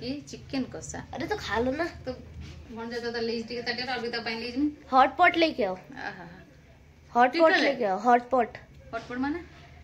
की चिकन कसा अरे तो खा लो ना तो मन जा तो लीज टिके ताटे और बिता पाइन लीज में हॉट पॉट लेके आओ आहा हॉट पॉट लेके आओ हॉट पॉट माने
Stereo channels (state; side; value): identical; both; correlation 1.00